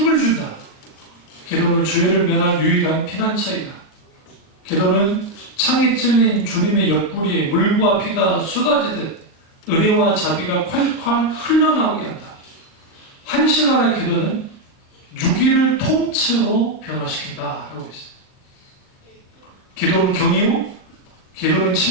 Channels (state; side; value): late; right; 39 ms